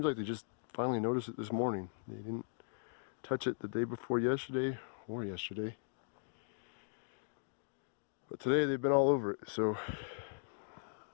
like they just finally noticed it this morning. They didn't touch it the day before yesterday or yesterday. But today they've been all over it, so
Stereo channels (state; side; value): silent; right; digital silence